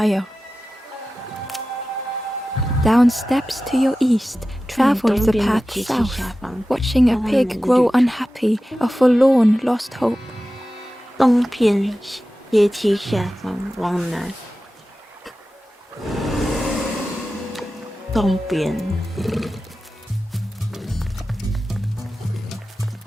Down steps to your east, travel the path south, watching a pig grow unhappy, a forlorn lost hope. 东边阶梯下方往南，东边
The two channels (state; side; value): normal; both; correlation 0.94